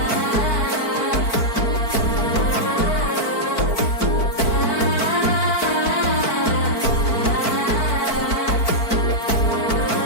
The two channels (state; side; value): late; right; 4.5 ms